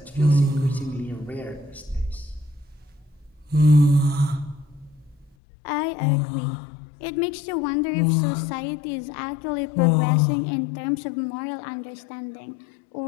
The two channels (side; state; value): right; drops out; at 5.4 s